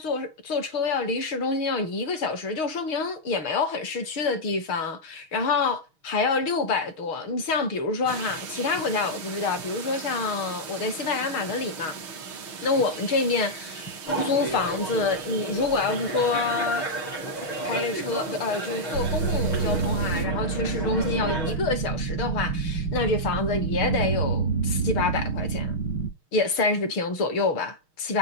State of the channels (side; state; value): right; late; 6.4 ms